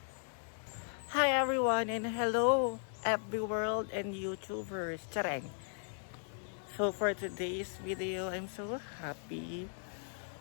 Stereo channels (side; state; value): right; silent; 53 dB below the other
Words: Hi everyone and hello FB world and YouTubers. Chareng. So for today's video, I'm so happy